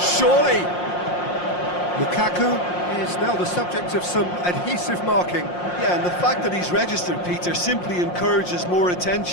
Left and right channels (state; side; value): late; right; 5.6 ms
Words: Lukaku is now the subject of some adhesive marking. Yeah, and the fact that he's registered, Peter, simply encourages more